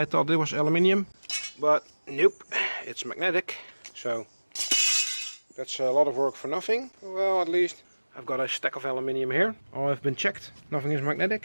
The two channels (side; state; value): both; inverted; correlation -1.00